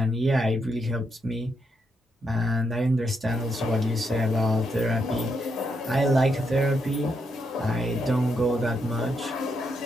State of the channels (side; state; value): both; normal; correlation 0.79